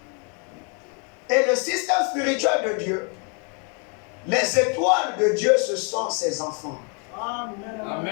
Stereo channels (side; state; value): right; quieter; 36.8 dB